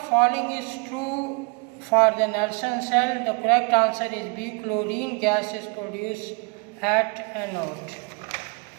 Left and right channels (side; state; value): left; quieter; 31.4 dB